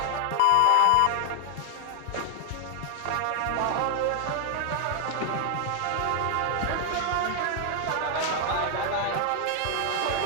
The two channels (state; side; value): different; both; correlation 0.00